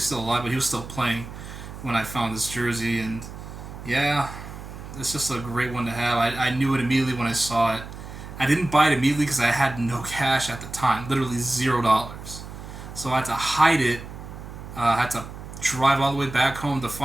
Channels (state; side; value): noise; right; hum, 12 dB below the sound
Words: still alive, but he was still playing when I found this jersey. And yeah, it's just a great one to have. I knew it immediately when I saw it. I didn't buy it immediately because I had no cash at the time, literally $0. So I had to hide it. I had to drive all the way back home to